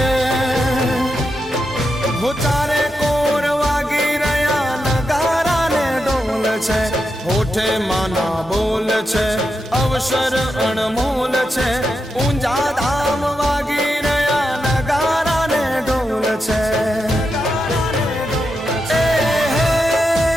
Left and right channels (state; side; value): normal; both; correlation 0.86